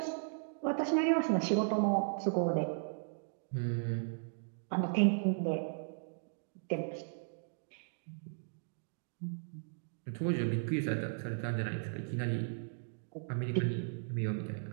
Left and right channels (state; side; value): silent; left; digital silence